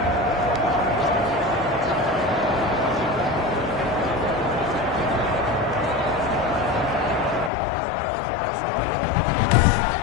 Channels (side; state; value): right; drops out; at 7.5 s